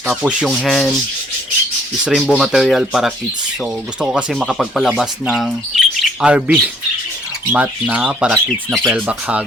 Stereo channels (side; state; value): both; normal; correlation 0.62